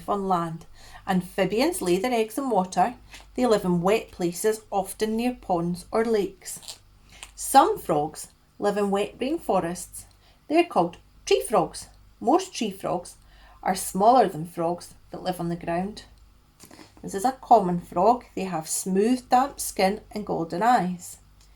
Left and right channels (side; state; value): both; identical; correlation 1.00